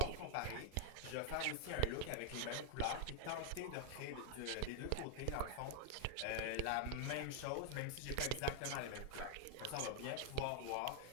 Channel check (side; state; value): both; different; correlation 0.00